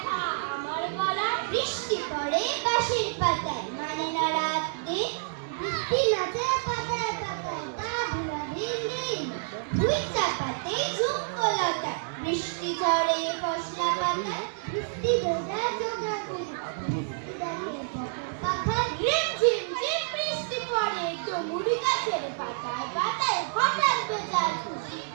আমার গলায়। বৃষ্টি পড়ে বাঁশের পাতায়, মানে না রাত দিন, বৃষ্টি নাচে পাতায় পাতায়, তা ভুলা দিন দিন। ভুই চাপাতে ঝুমকো লাগায়, বৃষ্টি ঝরে ফসলা পাতায়, বৃষ্টি ভেজা চোখা পাখায় রিমঝিম ঝিম বৃষ্টি পড়ে ডুমুরি গাছের পাতায় পাতায়। হঠাৎ বেচার খুশির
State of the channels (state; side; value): silent; left; digital silence